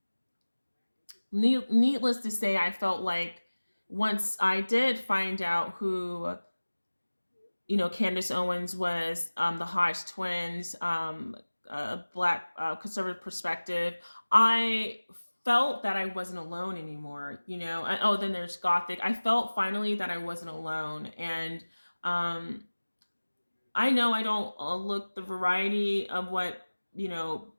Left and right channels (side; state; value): both; inverted; correlation -1.00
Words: needless to say, I felt like once I did find out who Candace Owens was, the Hodge twins, a black conservative perspective. I felt that I wasn't alone anymore. Oh, then there's Gothic. I felt finally that I wasn't alone, and um, I know I don't look the variety of what